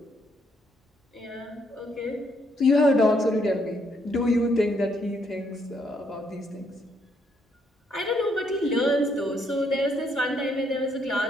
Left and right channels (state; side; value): normal; both; correlation 0.72